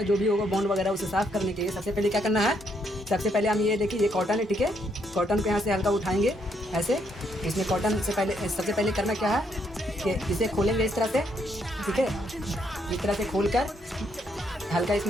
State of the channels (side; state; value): both; normal; correlation 0.74